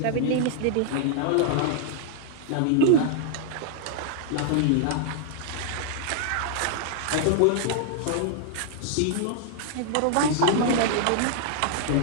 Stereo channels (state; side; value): different; both; correlation -0.01